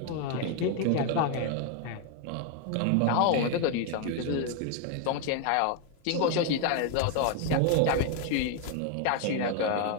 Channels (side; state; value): both; different; correlation 0.01